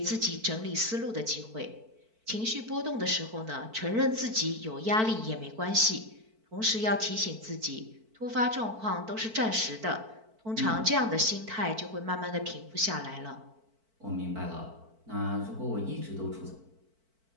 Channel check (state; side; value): late; left; 4.5 ms